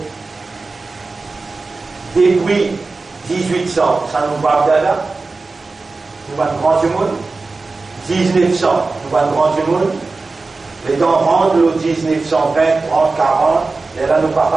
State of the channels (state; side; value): quieter; left; 3.8 dB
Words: depuis 1800, ça nous va là, nous va grand du monde, 1900, nous va grand du monde, les temps rentrent le 1920, 30, 40, et là nous ne va